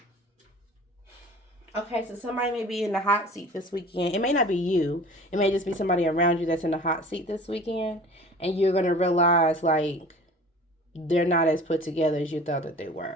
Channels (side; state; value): both; normal; correlation 0.43